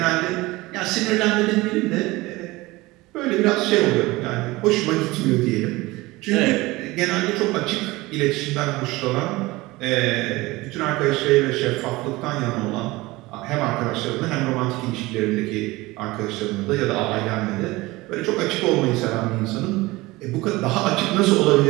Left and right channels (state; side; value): quieter; left; 20.6 dB